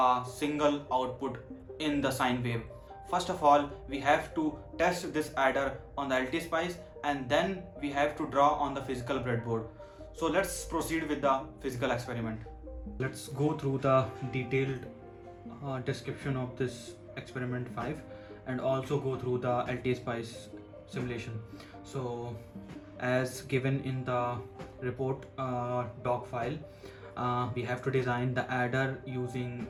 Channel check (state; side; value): identical; both; correlation 1.00